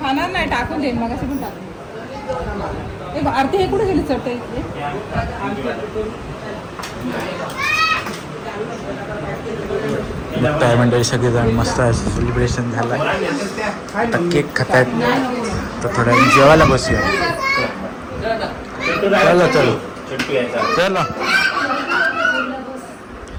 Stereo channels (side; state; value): both; identical; correlation 1.00